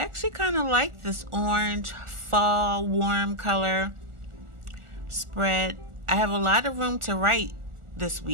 kind of like this orange fall warm color spread. I have a lot of room to write this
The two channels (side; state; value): left; late; 1.4 ms